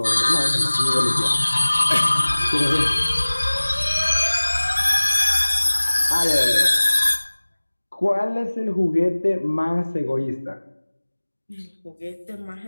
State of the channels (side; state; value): both; inverted; correlation -1.00